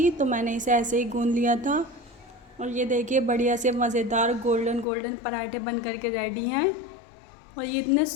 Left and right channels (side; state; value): right; drops out; at 4.9 s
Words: तो मैंने इसे ऐसे ही गूंद लिया था। और ये देखिए बढ़िया से मज़ेदार गोल्डन गोल्डन पराठे बन करके रेडी हैं। और ये इतने